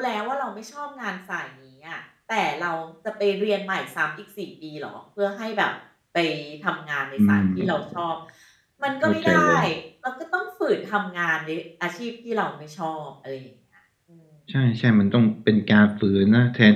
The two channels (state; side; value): identical; both; correlation 1.00